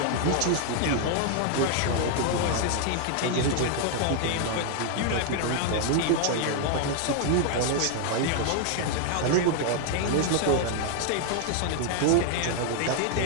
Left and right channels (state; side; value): different; both; correlation 0.00